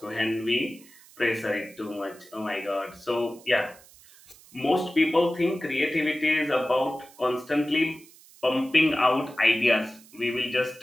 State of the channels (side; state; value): right; noise; hiss, 24 dB below the sound